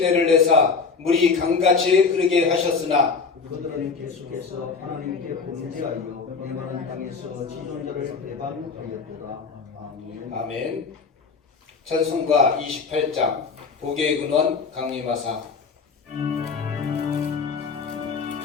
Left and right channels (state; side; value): quieter; right; 5.0 dB